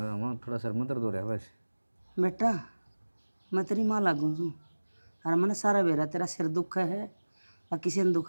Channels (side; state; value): both; inverted; correlation -1.00